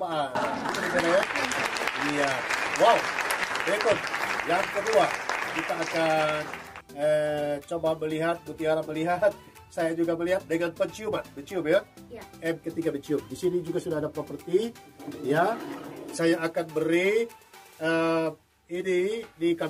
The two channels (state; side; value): identical; both; correlation 1.00